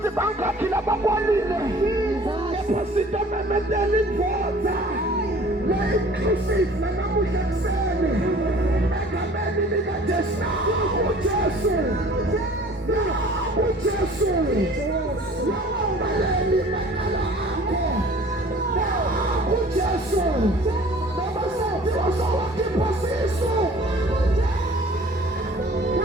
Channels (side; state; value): both; normal; correlation 0.49